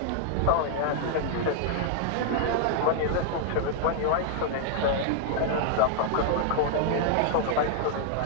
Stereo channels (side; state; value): both; different; correlation -0.01